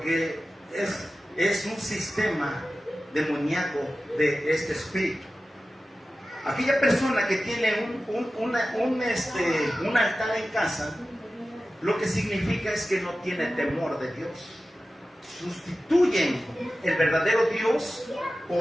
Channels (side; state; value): both; normal; correlation 0.94